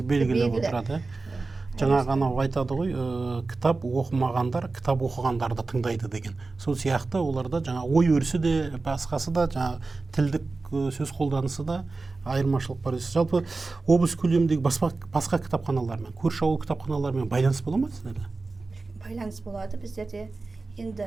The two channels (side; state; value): left; quieter; 3.7 dB